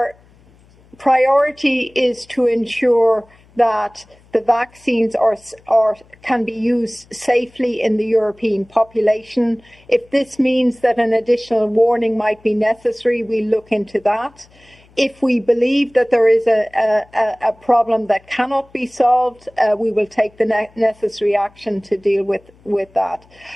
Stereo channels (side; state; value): left; noise; hum, 29 dB below the sound